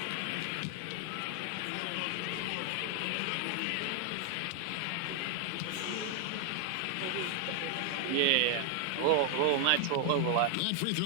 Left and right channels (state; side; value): different; both; correlation 0.00